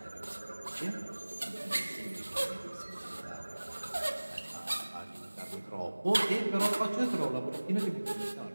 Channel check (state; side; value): inverted; both; correlation -1.00